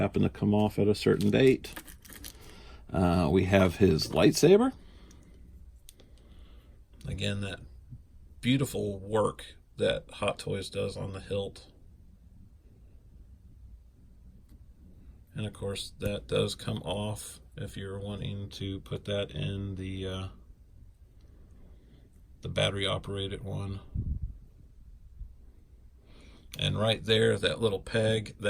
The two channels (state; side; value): identical; both; correlation 1.00